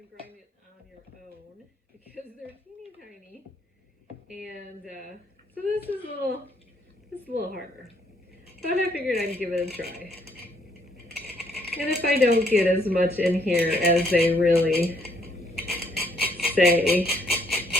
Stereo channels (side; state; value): both; normal; correlation 0.68